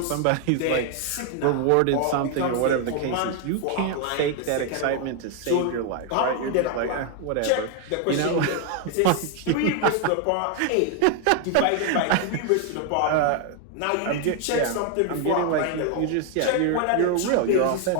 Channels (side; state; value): both; different; correlation 0.00